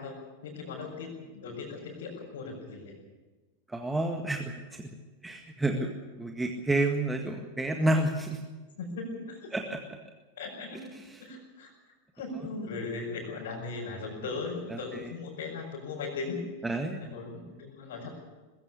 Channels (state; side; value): normal; both; correlation 0.51